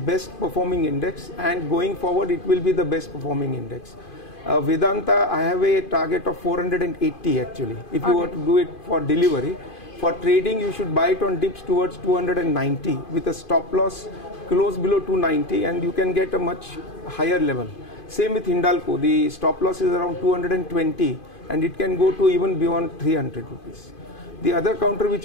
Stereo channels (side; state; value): right; late; 2.5 ms